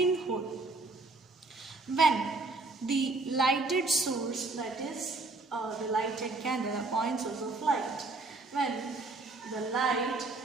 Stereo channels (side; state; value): left; quieter; 3.4 dB